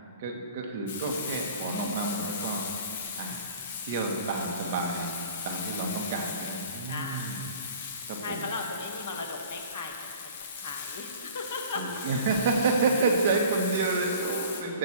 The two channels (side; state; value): both; inverted; correlation -0.45